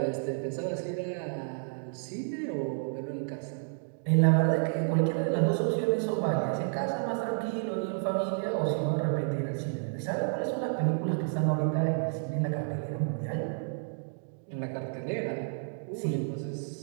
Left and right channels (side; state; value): left; silent; digital silence